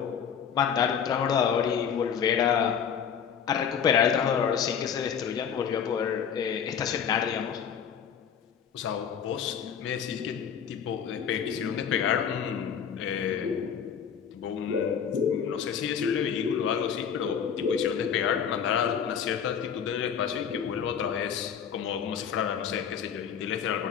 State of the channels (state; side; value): quieter; right; 7.7 dB